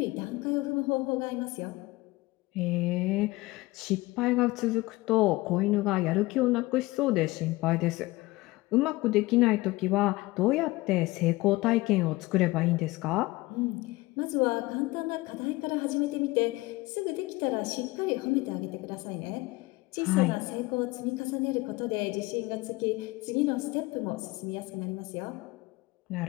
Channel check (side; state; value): right; quieter; 20.7 dB